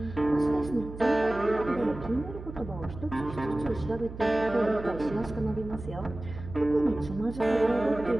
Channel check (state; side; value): noise; right; hum, 12 dB below the sound